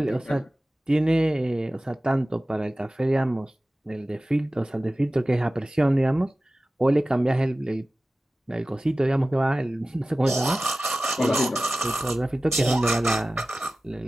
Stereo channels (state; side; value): normal; both; correlation 0.96